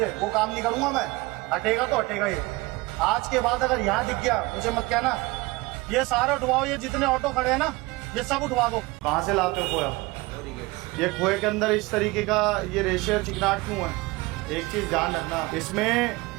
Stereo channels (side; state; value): left; quieter; 22.6 dB